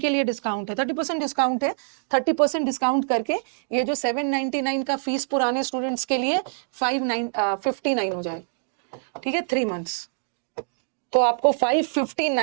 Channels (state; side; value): silent; left; digital silence